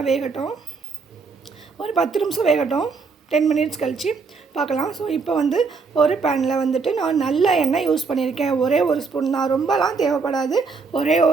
வேகட்டும், ஒரு 10 நிமிஷம் வேகட்டும், 10 மினிட்ஸ் கழித்து பார்க்கலாம். ஸோ இப்போ வந்து ஒரு பேனில் வந்துட்டு நான் நல்ல எண்ணெய் யூஸ் பண்ணியிருக்கேன். ஒரே ஒரு ஸ்பூன் தான், ரொம்பலாம் தேவைப்படாது. ஒரே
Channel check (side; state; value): left; quieter; 4.8 dB